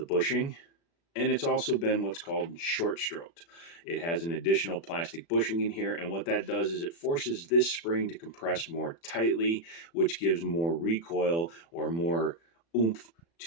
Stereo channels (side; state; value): right; late; 36 ms